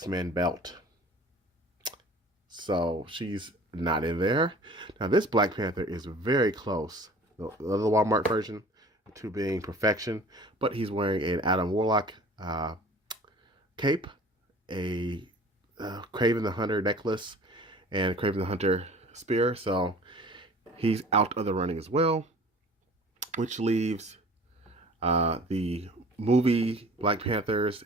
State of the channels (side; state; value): both; normal; correlation 0.46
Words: belt. So she's not in there. Now this Black Panther is very close. The other Walmart version to being perfection. But he's wearing an Adam Warlock cape, a Kraven the Hunter necklace, and Kraven the Hunter spear. So he's out of the running as well, which leaves the movie Black Panthers,